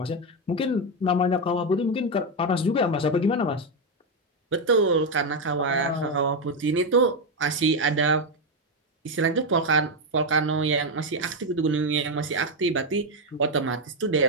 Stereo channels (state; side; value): normal; both; correlation 0.06